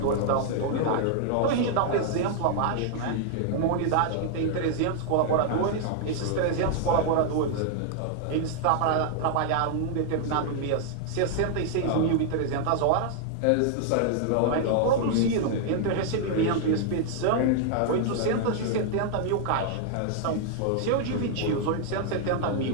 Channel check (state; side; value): different; both; correlation -0.01